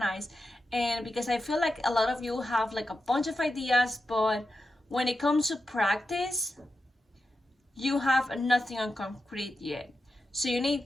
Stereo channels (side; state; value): both; normal; correlation 0.89